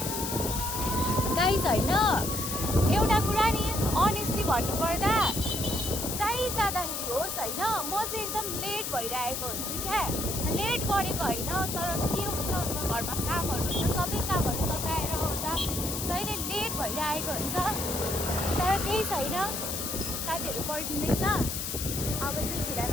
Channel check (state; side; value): noise; left; hiss, 4 dB below the sound